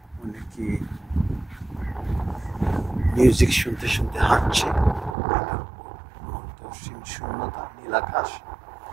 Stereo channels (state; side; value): drops out; left; at 5.2 s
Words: অনেকে মিউজিক শুনতে শুনতে হাঁটছে। অন্তহীন শূন্যতা, নীলাকাশ।